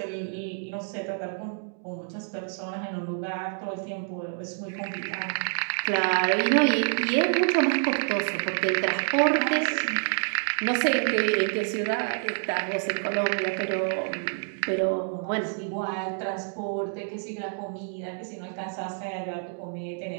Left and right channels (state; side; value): silent; left; digital silence